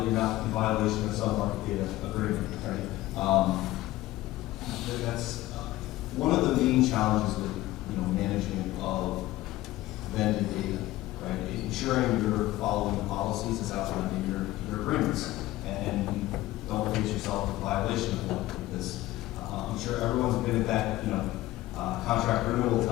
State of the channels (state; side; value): quieter; right; 16.7 dB